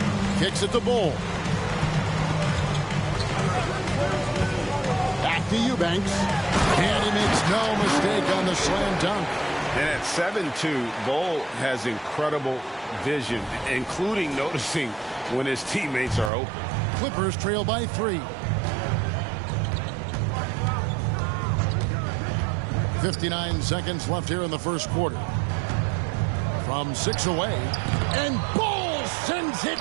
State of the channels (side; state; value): left; drops out; at 16.3 s